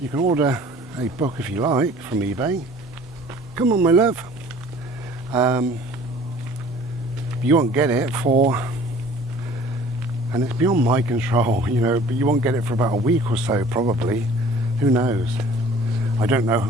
you can order a book if you like from eBay. Come on, my love. You won't get it for, and it's beyond my control, you know, but you won't get it for about a week or so probably. Who knows? I don't know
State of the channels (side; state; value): both; normal; correlation 0.50